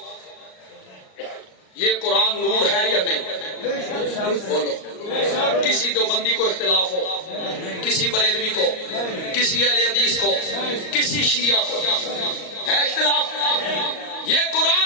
یہ قرآن نور ہے یا نہیں؟ بولو۔ کسی دیوبندی کو اختلاف ہو، کسی بریلوی کو، کسی اہل حدیث کو، کسی شیعہ کو ہے اختلاف؟ یہ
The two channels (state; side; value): late; right; 38 ms